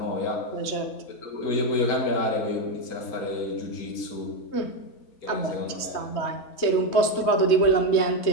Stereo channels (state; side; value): late; right; 3.2 ms